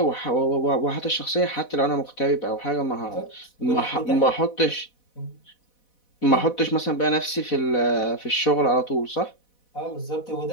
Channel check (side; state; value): right; late; 4.1 ms